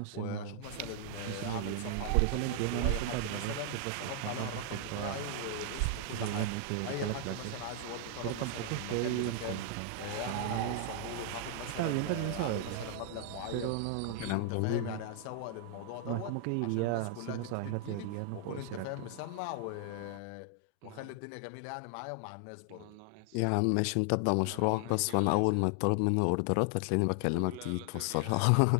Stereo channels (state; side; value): different; both; correlation 0.00